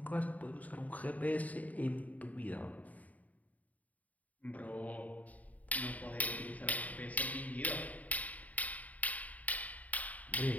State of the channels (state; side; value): late; right; 0.073 ms